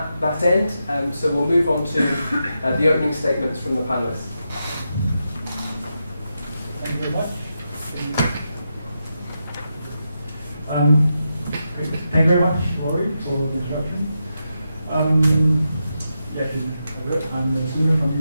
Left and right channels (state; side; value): inverted; both; correlation -0.86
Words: that end. So we'll move on to the opening statements from the panelists. Thank you very much. Thank you very much, Rory, for the introduction. I'm Sunu from